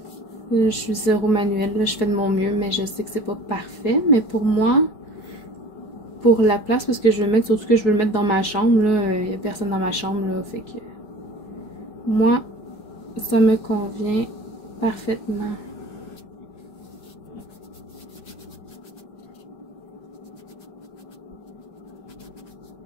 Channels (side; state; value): right; late; 4.7 ms